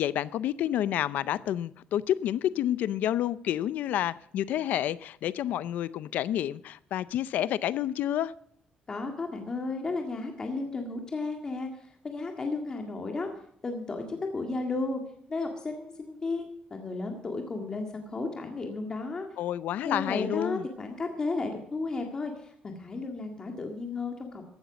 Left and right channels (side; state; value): right; quieter; 7.1 dB